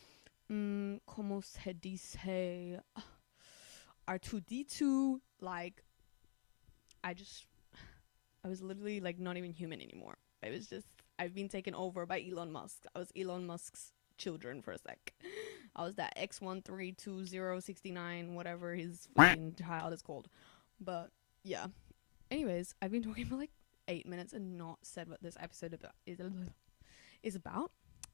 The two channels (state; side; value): silent; right; digital silence